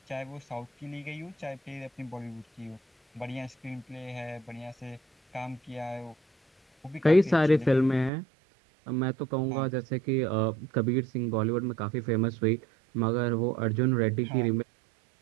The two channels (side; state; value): left; drops out; at 8.1 s